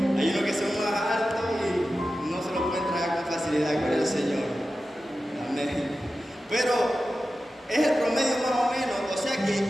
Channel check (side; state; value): both; normal; correlation 0.93